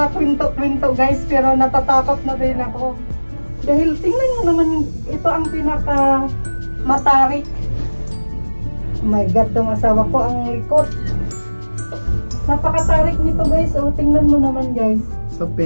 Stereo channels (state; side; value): inverted; both; correlation -1.00